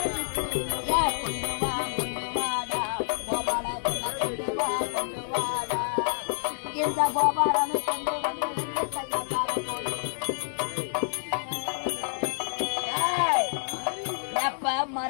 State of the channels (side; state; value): right; silent; digital silence